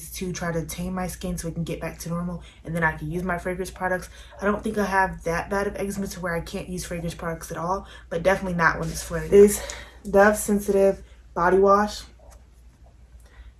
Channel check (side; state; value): both; identical; correlation 1.00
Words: to try to tame my skin so it can get back to normal, and then I can use my fragrance products. I don't think I have that bad of eczema to where I can't use fragrance products at all, but definitely not when it's flaring. This Dove Sensitive Body Wash.